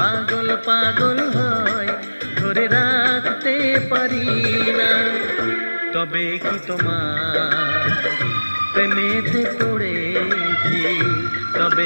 পাগল হয়, ধরে রাখতে পারি না। তবে কি তোমার প্রেমেতে পড়েছি,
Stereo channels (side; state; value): both; inverted; correlation -1.00